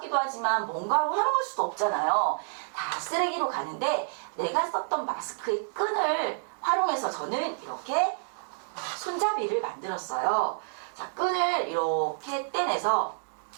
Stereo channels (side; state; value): left; silent; digital silence